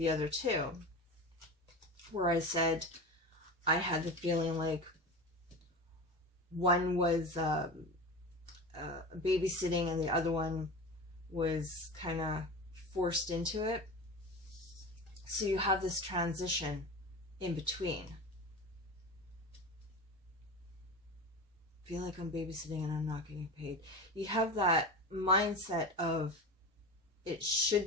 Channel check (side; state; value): both; normal; correlation 0.28